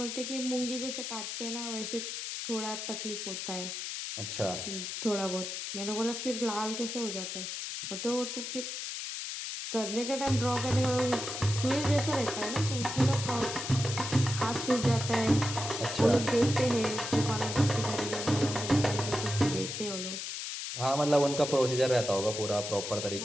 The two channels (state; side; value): noise; left; hiss, 5 dB below the sound